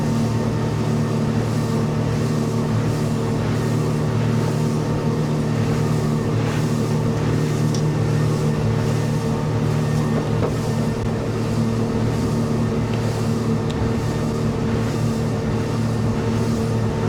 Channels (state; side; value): identical; both; correlation 1.00